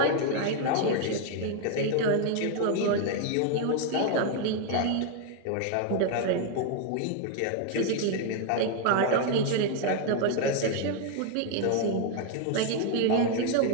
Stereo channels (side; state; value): both; different; correlation 0.01